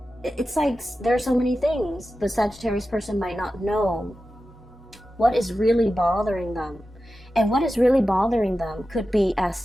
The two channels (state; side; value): normal; both; correlation 0.93